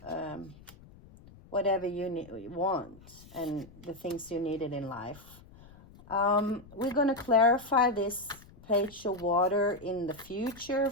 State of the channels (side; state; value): left; noise; rumble, 22 dB below the sound